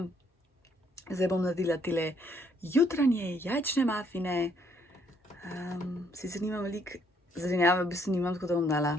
Zdaj bom naredila tile jutranje jajčne mafine. Sicer nimam veliko zelenjave, v bistvu nimam, tako da bom dala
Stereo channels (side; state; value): both; normal; correlation 0.68